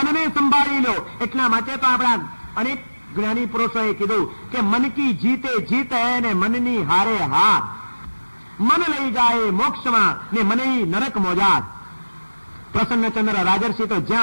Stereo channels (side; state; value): both; inverted; correlation -1.00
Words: સંભાળી લો. એટલા માટે તો આપણા અનેક જ્ઞાની પુરુષોએ કીધું કે મન કી જીતે જીત હૈ ને મનની હારે હાર. મન લઈ જાય મોક્ષમાં ને મને નરક મોજાર. પ્રસન્નચંદ્ર રાજર્ષિ તો